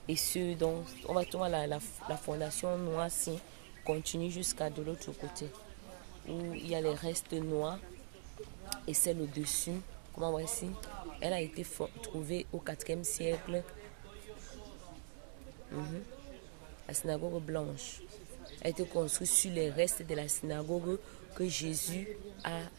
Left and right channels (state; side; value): silent; left; digital silence